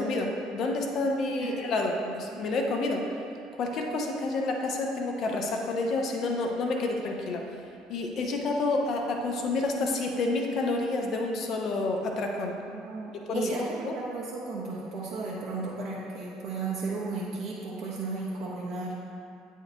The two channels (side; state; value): both; normal; correlation 0.59